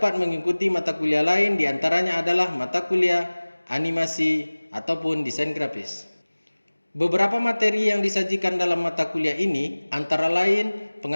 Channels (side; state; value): both; inverted; correlation -1.00